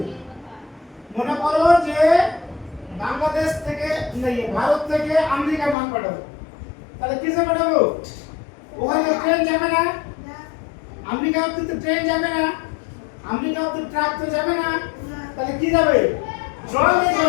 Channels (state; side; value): drops out; right; at 5.8 s